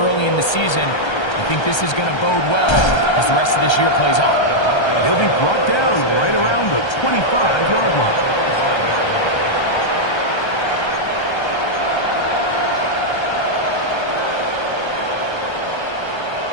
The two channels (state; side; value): late; right; 1.3 ms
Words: in the season. I think this is going to bode well as the rest of this year plays on. He'll be brought down right around the 25-yard line.